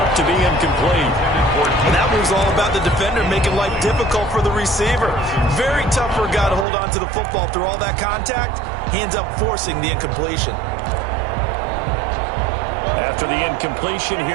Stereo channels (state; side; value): drops out; left; at 6.7 s